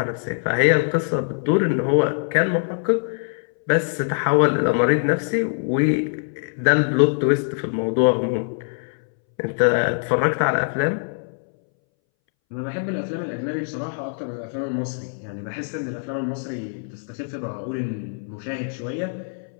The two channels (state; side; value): silent; right; 62 dB below the other